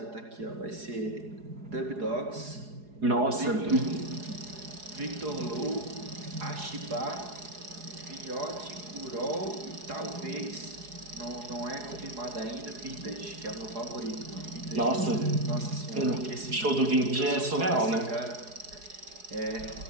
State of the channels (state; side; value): late; left; 4.8 ms